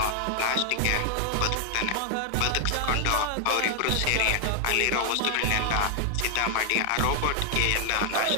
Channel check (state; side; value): different; both; correlation 0.00